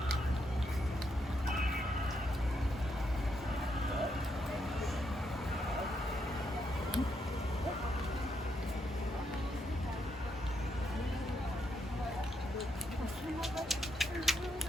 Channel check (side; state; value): both; normal; correlation 0.78